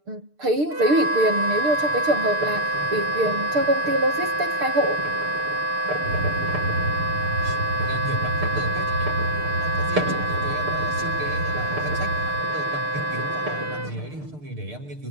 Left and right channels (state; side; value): late; left; 6.7 ms